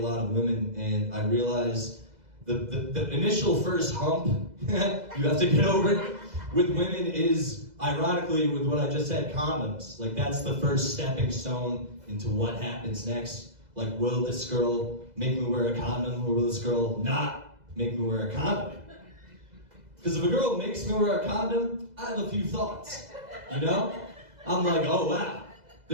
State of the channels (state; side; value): late; left; 2.0 ms